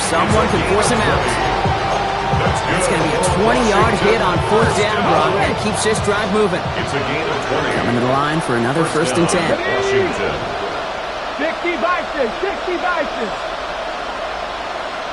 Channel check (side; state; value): both; identical; correlation 1.00